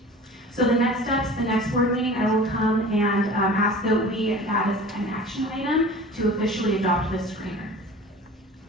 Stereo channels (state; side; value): normal; both; correlation 0.41